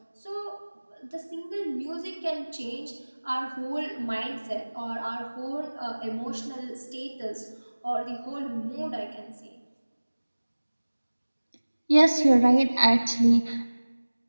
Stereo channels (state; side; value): inverted; both; correlation -1.00